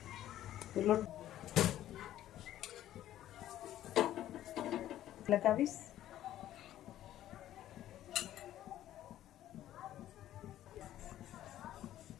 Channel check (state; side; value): quieter; right; 12.8 dB